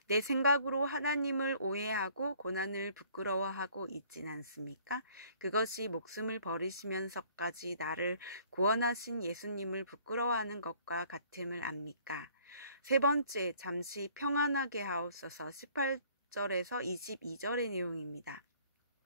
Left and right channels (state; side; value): inverted; both; correlation -0.58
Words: 내 생각으로 하나님을 오해하고 고난을 부끄러워하고 있진 않습니까? 그것이 목숨을 버리시면서까지 나를 구원하신 예수님을 부끄러워하는 것과 같음을 압니까? 세 번째, 잠시 평안하게 하옵소서 18절에서 22절의 내용입니다.